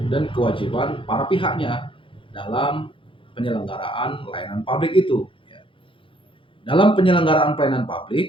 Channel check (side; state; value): right; late; 0.25 ms